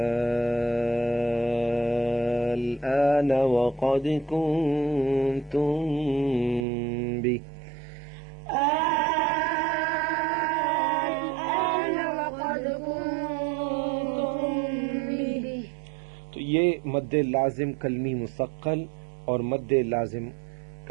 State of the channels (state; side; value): drops out; left; at 6.7 s